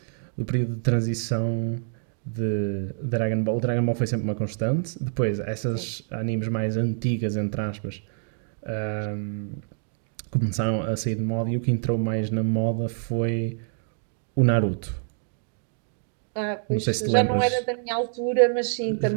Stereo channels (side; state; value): left; silent; 59 dB below the other